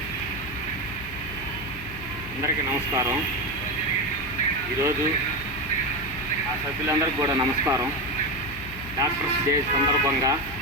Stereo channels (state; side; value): noise; left; hum, 13 dB below the sound